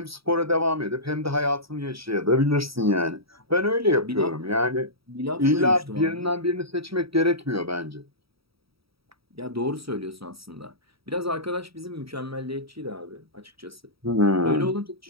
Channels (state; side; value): late; left; 0.76 ms